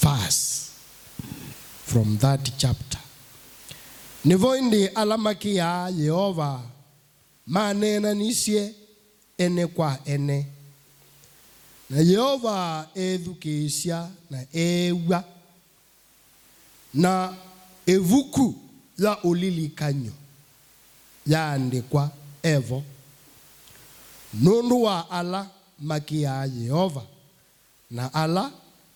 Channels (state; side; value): identical; both; correlation 1.00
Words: from that chapter. Nivoindi alamaki ya Yehova manena nisye ene kwa ene. Na Yehova edhukisya na ewa na evuku ya ulilikanyo ya andikwa evo nundu wa ala maki ya Yehova na ala